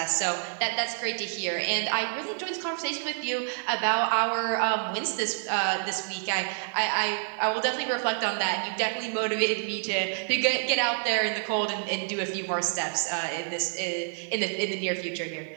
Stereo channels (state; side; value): silent; left; digital silence